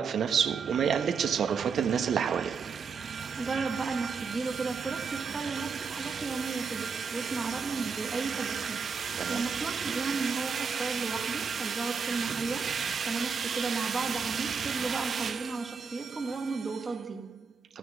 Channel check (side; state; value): left; quieter; 5.6 dB